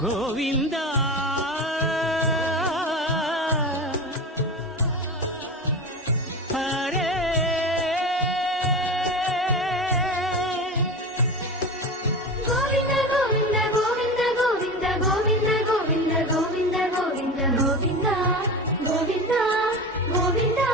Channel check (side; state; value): both; normal; correlation 0.27